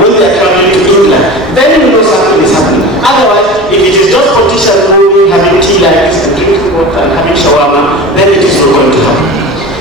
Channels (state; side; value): normal; both; correlation 0.33